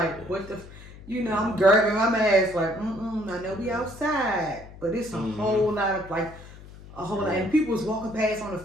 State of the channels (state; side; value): noise; left; hum, 18 dB below the sound